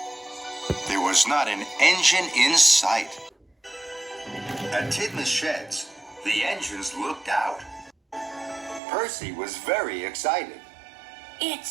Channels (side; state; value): left; drops out; at 8.8 s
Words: There was not an engine in sight. At Tidmouth Sheds, the engines looked out. Percy was very excited. It